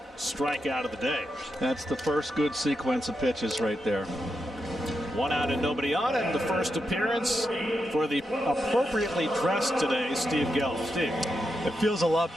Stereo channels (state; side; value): normal; both; correlation 0.86